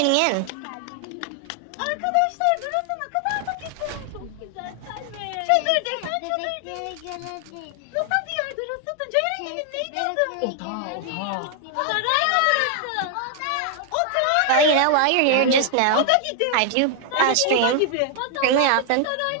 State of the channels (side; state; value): both; different; correlation 0.00